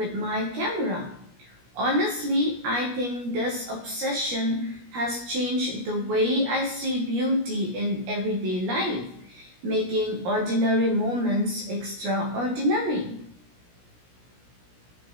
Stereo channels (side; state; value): left; late; 17 ms